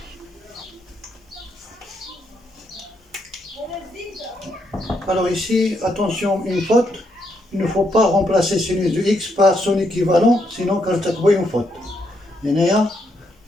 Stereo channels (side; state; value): both; normal; correlation 0.77